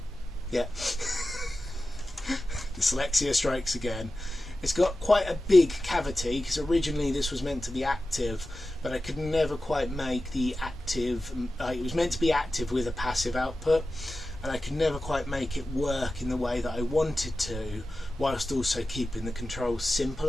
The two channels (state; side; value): normal; both; correlation 0.94